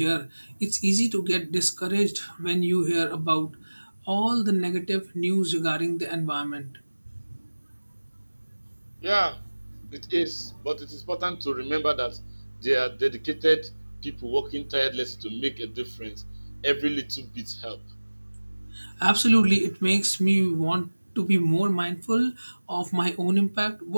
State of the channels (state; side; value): inverted; both; correlation -1.00